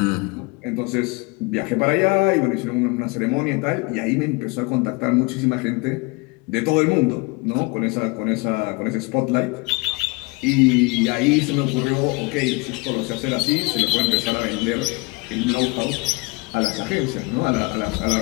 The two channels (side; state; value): right; quieter; 26.7 dB